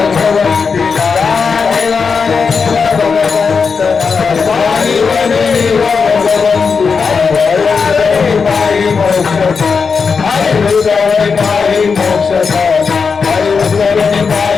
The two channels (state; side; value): quieter; right; 5.4 dB